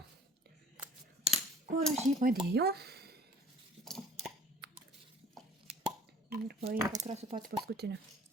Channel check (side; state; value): both; normal; correlation 0.50